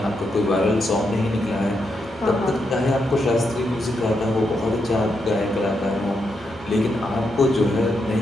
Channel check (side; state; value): both; normal; correlation 0.82